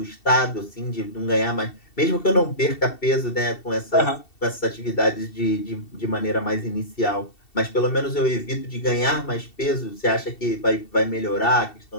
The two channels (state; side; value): late; right; 2.7 ms